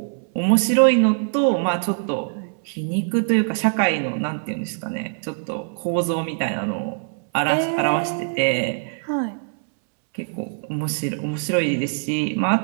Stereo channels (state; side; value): silent; left; 64 dB below the other